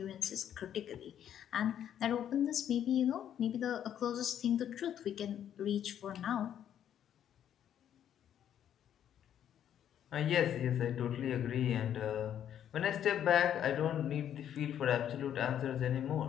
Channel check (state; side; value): quieter; right; 10.0 dB